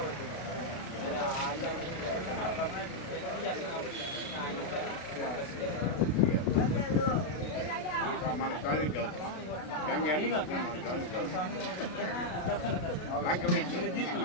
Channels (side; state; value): right; late; 33 ms